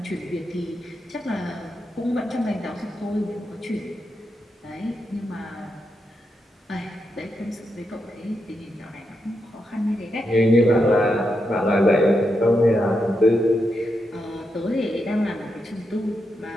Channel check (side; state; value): both; normal; correlation 0.84